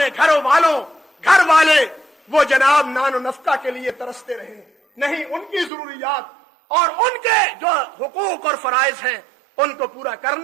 گھر والے وہ جناب نان و نفقہ کے لیے ترستے رہیں. نہیں، ان کی ضروریات اور ان کے جو حقوق اور فرائض ہیں ان کو پورا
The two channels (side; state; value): left; drops out; at 5.7 s